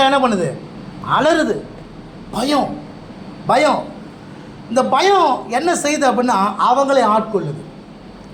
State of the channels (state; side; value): identical; both; correlation 1.00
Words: என்ன பண்ணுது? அலறுது. பயம் பயம். இந்த பயம் என்ன செய்யுது அப்படின்னா அவங்களே ஆட்கொள்ளுது.